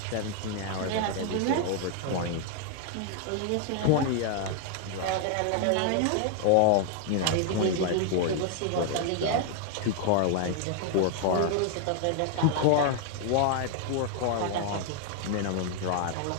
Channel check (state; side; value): different; both; correlation 0.00